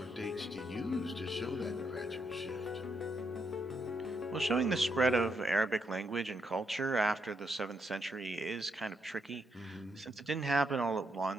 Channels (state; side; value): normal; both; correlation 0.79